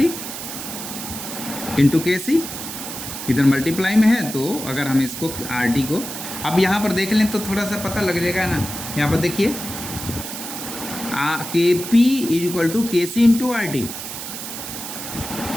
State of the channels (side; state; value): right; noise; hiss, 8 dB below the sound